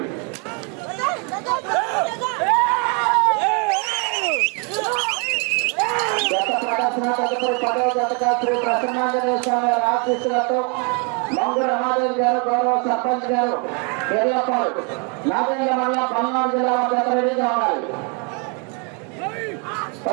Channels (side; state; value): left; quieter; 34.1 dB